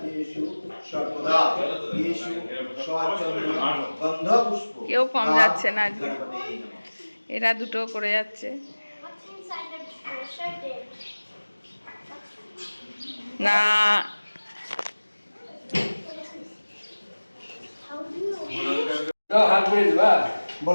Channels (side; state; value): both; inverted; correlation -1.00